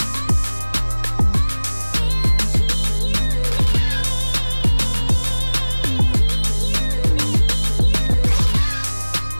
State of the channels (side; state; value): both; inverted; correlation -1.00